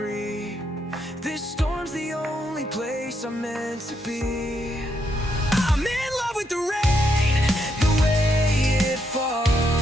This storm's the only place I'm meant to be. I'm in love with the rain, the way it falls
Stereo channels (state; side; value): normal; both; correlation 0.77